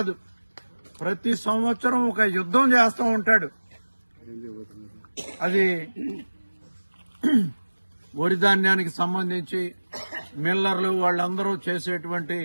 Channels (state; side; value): inverted; both; correlation -1.00